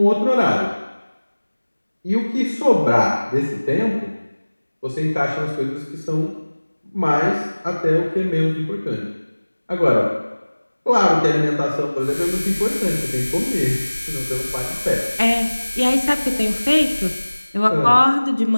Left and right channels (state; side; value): inverted; both; correlation -1.00